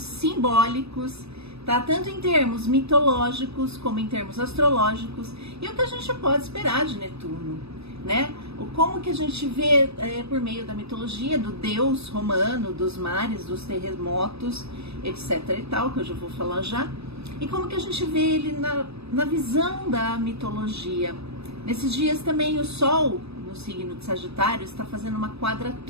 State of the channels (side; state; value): left; late; 0.78 ms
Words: tá? Tanto em termos mitológicos como em termos astrológicos, e o que a gente pode esperar de Netuno, né? Como que a gente vê por meio da mitologia do deus romano, dos mares, dos terremotos, etc e tal, que eu já vou falar já, e como que a gente vê ele na visão da mitologia. Nesses dias também o Sol, no signo de Sagitário, está fazendo uma